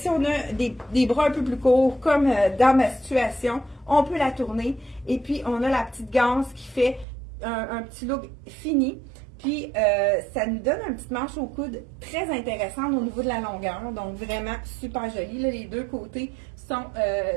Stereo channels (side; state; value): left; drops out; at 7.1 s